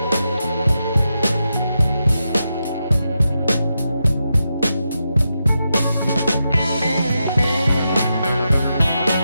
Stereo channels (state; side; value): inverted; both; correlation -0.86